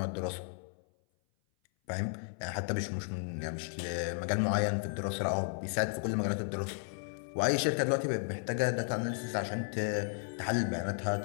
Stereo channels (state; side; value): silent; right; 55 dB below the other